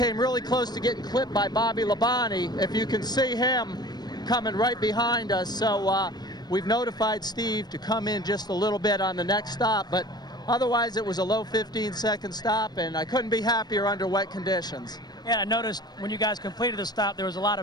really close to getting clipped by Bobby Labonte, if you can see him coming right behind us. So we've notified Steve to come in just a little bit on the next stop, but otherwise it was a low 15-second stop, and I couldn't be happier under wet conditions. Yeah, I noticed when you guys completed the stop, there was a lot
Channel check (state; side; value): late; right; 0.20 ms